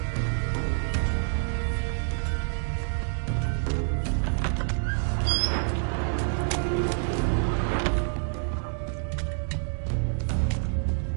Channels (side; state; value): left; silent; 60 dB below the other